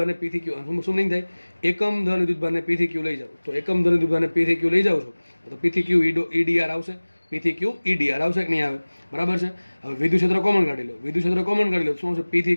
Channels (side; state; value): both; inverted; correlation -1.00